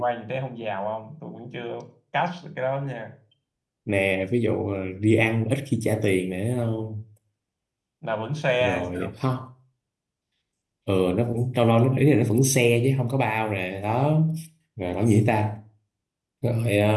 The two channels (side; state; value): both; identical; correlation 1.00